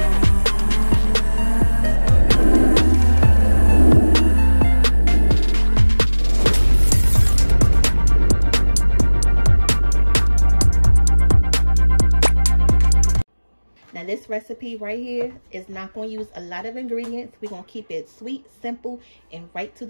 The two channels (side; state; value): both; inverted; correlation -1.00